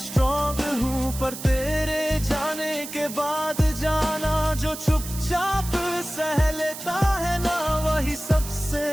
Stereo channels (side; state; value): right; noise; hiss, 10 dB below the sound